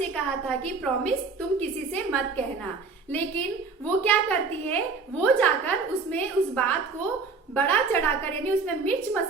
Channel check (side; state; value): left; quieter; 4.5 dB